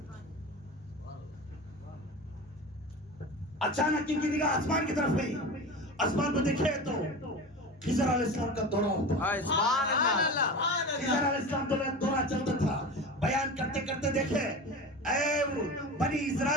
اچانک ان کی نگاہ آسمان کی طرف ہوئی. آسمان کو دیکھے تو خضر علیہ السلام کا دورہ ہوتا. سبحان اللہ. خضر علیہ السلام دورہ چلتا تھا. بیان کرتے کرتے دیکھے, اے بنی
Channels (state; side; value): normal; both; correlation 0.30